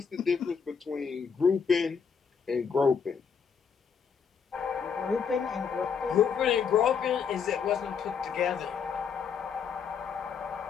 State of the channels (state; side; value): quieter; right; 6.5 dB